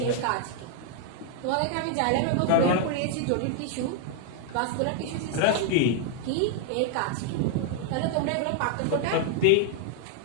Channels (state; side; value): different; both; correlation 0.00